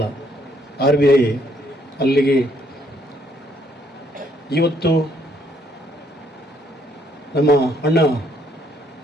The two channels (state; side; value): normal; both; correlation 0.68